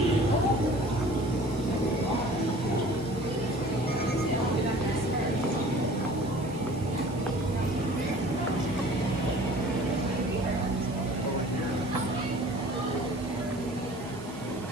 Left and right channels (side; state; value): right; noise; hiss, 21 dB below the sound